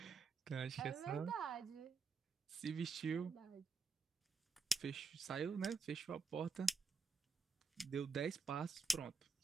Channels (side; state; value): left; quieter; 4.5 dB